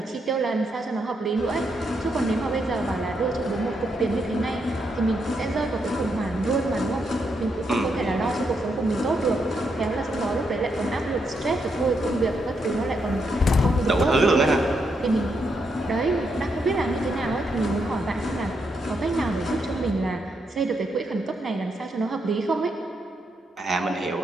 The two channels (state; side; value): normal; both; correlation 0.80